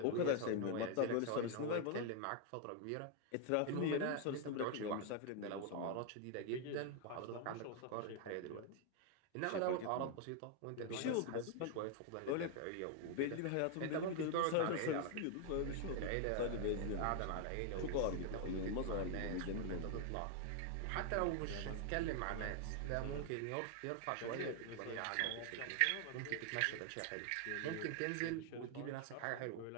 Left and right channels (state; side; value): different; both; correlation 0.00